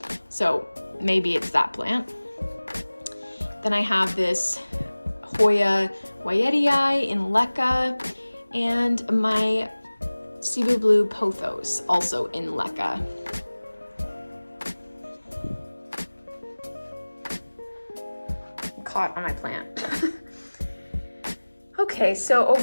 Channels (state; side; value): inverted; both; correlation -1.00